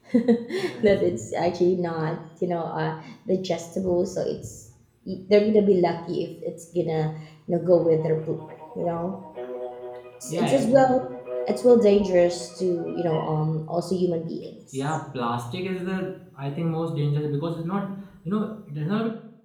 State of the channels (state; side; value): identical; both; correlation 1.00